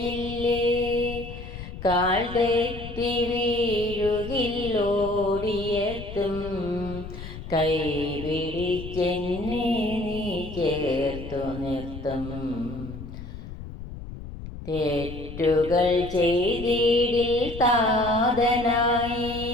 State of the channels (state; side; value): noise; left; rumble, 11 dB below the sound